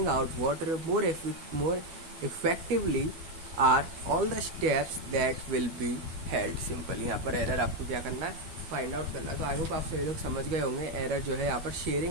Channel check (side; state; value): left; late; 12 ms